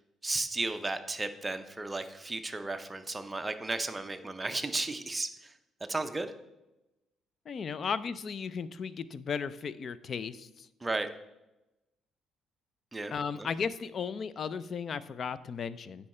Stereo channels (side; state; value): both; normal; correlation 0.85